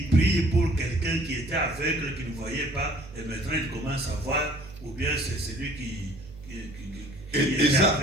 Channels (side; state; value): right; noise; hum, 17 dB below the sound